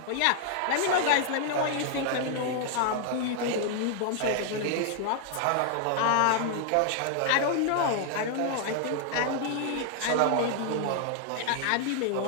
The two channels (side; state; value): both; different; correlation 0.00